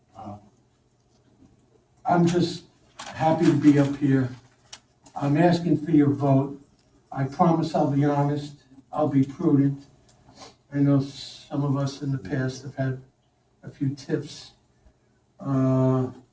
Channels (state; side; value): identical; both; correlation 1.00